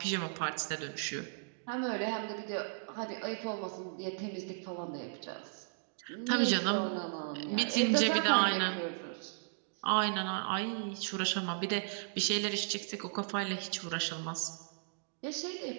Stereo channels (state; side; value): silent; left; digital silence